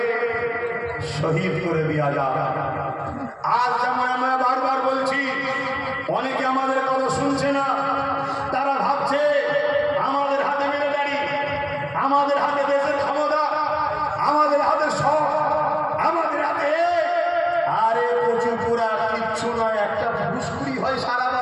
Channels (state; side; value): identical; both; correlation 1.00